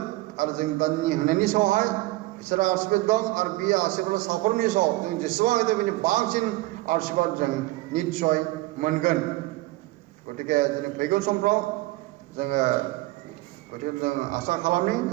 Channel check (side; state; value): left; quieter; 19.3 dB